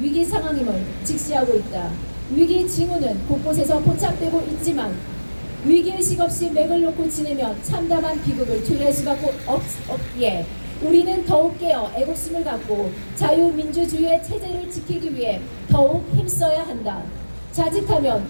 상황임을 직시하고 있다. 위기 징후는 곳곳에서 포착되고 있지만 위기의식 없이 맥을 놓고 지내면 참담한 비극을 초래할 수밖에 없기에 우리는 더욱 깨어 애국심을 갖고 자유민주주의의 체제를 지키기 위해 더욱 힘써야 한다. 자칫하면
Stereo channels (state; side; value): inverted; both; correlation -1.00